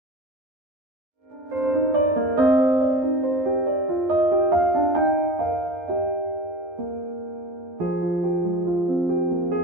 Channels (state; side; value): late; left; 11 ms